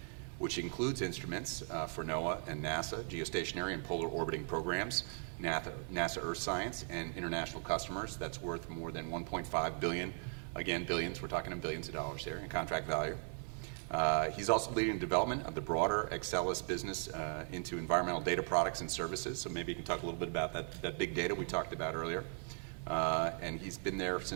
which includes instruments for NOAA and NASA, geostationary and polar orbiting programs, NASA Earth Science, and international customers. That's worth more than $1.5 billion. Again, billions, we're talking in billions of dollars here in contract value. He's also leading the development of the broader Excelis business into environmental data products and services. So maybe you can talk a little bit about that big data we talked about earlier. And he's been there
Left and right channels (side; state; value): left; silent; 52 dB below the other